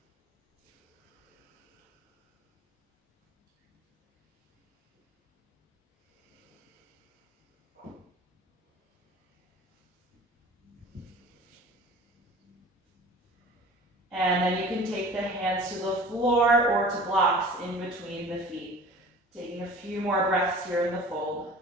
And then you can take the hands to the floor or to blocks in between the feet. Taking a few more breaths here in the fold.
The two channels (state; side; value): normal; both; correlation 0.43